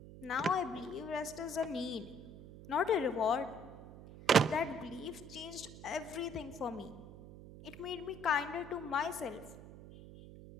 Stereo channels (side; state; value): right; noise; hum, 15 dB below the sound